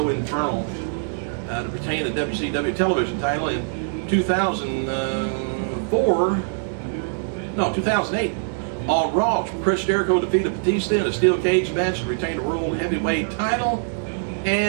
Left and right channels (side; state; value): left; silent; digital silence